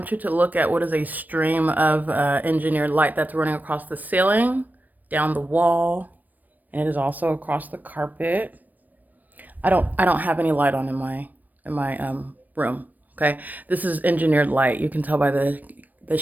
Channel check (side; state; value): left; late; 0.085 ms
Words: you to look at what is a stream of engineered light that's running across the ceiling, down the wall, and it is also across the carpet. I don't have any light on in my room. Okay, this is engineered light. You can tell by the